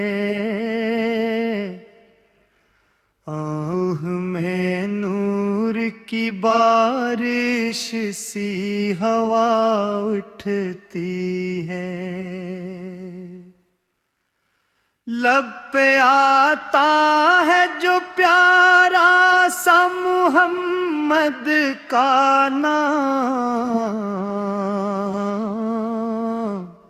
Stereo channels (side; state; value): both; identical; correlation 1.00